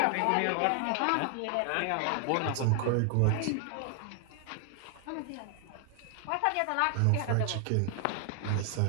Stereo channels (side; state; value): both; different; correlation 0.00